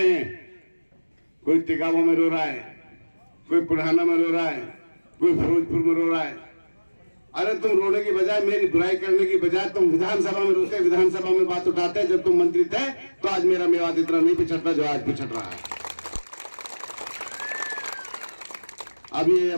हैं, कोई तिगावा में रो रहा है, कोई पुराना में रो रहा है, कोई फिरोजपुर में रो रहा है। अरे तुम रोने की बजाय, मेरी बुराई करने की बजाय तुम विधानसभा में रोते, विधानसभा में बात उठाते। जब तुम मंत्री थे तो आज मेरा मेवात इतना नहीं पिछड़ता जो आज पिछड़ रहा है। अब ये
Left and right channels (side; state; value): both; inverted; correlation -1.00